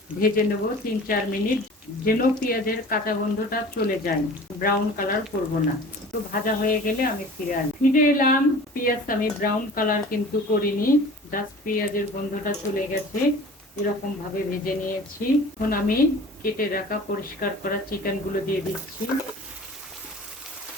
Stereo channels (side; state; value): both; normal; correlation 0.43